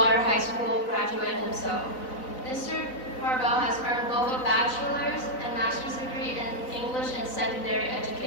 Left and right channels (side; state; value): right; late; 4.0 ms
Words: High School graduate himself. Mr. Harbell has earned both a bachelor's and master's degree in English and secondary